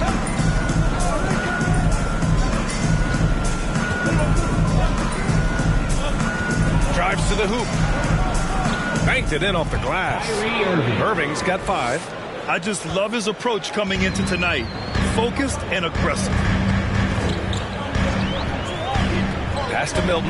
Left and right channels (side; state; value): both; identical; correlation 1.00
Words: Drives to the hoop. Banked it in off the glass. Irving's got 5. I just love his approach coming into tonight. Focused and aggressive. Pass to